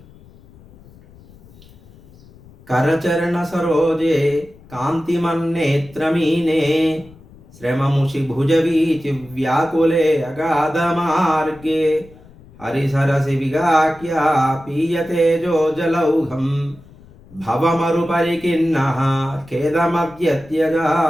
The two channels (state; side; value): noise; left; rumble, 24 dB below the sound